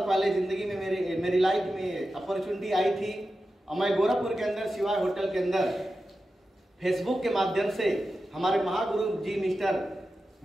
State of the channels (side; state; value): both; normal; correlation 0.92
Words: पहले जिंदगी में मेरी लाइफ में अपॉर्चुनिटी आई थी और मैं गोरखपुर के अंदर शिवाय होटल के अंदर फेसबुक के माध्यम से हमारे महागुरु जी मिस्टर